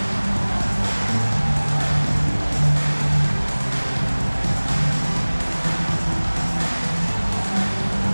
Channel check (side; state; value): both; inverted; correlation -1.00